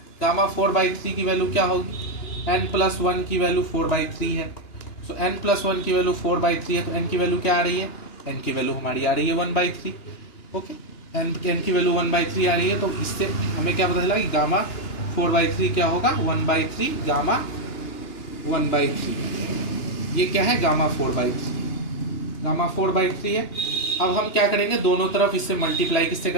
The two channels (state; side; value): late; right; 2.9 ms